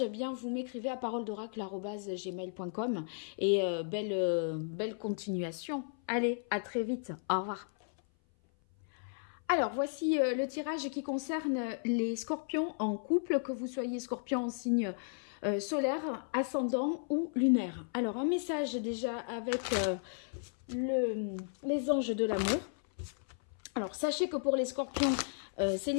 eh bien vous m'écrivez à paroledoracle@gmail.com, et belle continuation. Allez, à très vite. Au revoir. Alors, voici le tirage qui concerne les scorpions en couple, que vous soyez scorpion en signe solaire, ascendant ou lunaire. Alors, un message déjà avec les anges de l'amour. Alors, sachez que pour les scorpions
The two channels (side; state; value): right; silent; 55 dB below the other